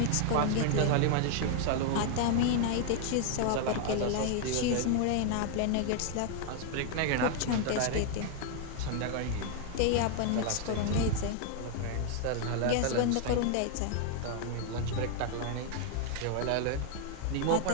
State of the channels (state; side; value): different; both; correlation 0.00